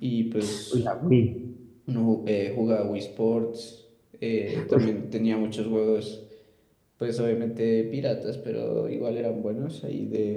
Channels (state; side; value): identical; both; correlation 1.00